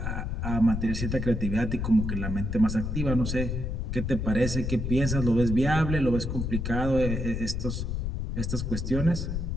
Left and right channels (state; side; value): noise; left; rumble, 2 dB below the sound